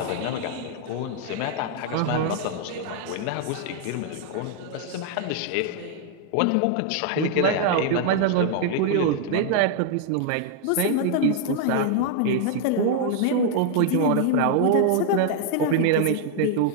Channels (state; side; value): different; both; correlation 0.00